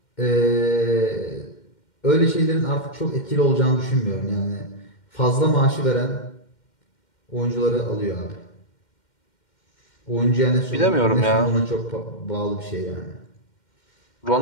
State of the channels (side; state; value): right; late; 2.1 ms